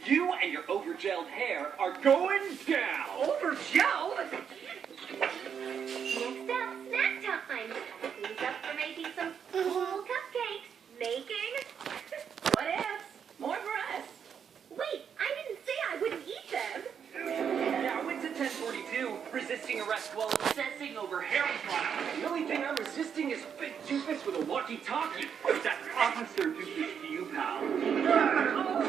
You and your over-gelled hair are going down! Over-gelled? Next up, snack time. Who's up for making some cool cupcakes? Making? What ifs? More for us. Wait, I didn't say I wouldn't eat them. Yeah, I went to 1042, resisting arrest while obsessing over hair product. The only thing I'm resisting is Big Doofus with a walkie-talkie. That's Officer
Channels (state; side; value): quieter; left; 7.5 dB